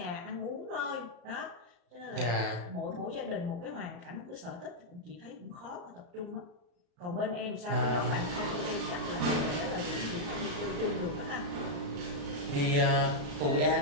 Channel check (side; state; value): left; late; 35 ms